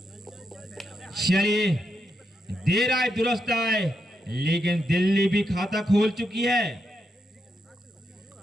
चलिए देर आए दुरुस्त आए, लेकिन दिल्ली भी खाता खोल चुकी है।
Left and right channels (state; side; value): normal; both; correlation 0.83